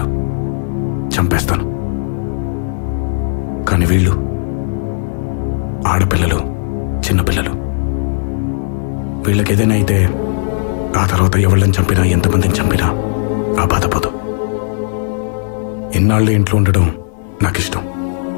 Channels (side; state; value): right; silent; 69 dB below the other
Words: చంపేస్తాను. కానీ వీళ్ళు ఆడపిల్లలు, చిన్నపిల్లలు. వీళ్ళకి ఏదైనా అయితే ఆ తర్వాత ఎవళ్ళని చంపినా, ఎంతమందిని చంపినా ఆ బాధపోదు. ఇన్నాళ్ళు ఇంట్లో ఉండడం నాకు ఇష్టం.